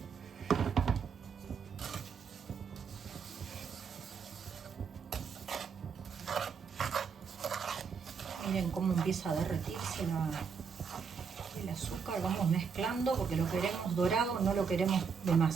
Miren cómo empieza a derretirse el azúcar. Vamos mezclando porque lo queremos dorado, no lo queremos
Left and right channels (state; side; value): quieter; left; 6.0 dB